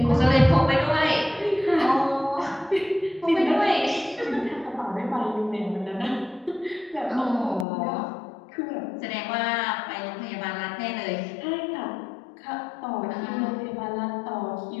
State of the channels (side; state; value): right; drops out; at 7.7 s